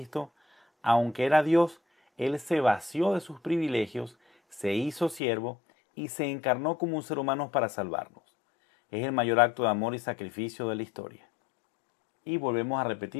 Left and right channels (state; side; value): drops out; right; at 5.2 s